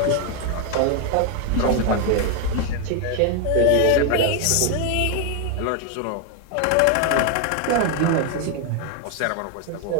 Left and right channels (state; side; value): different; both; correlation 0.01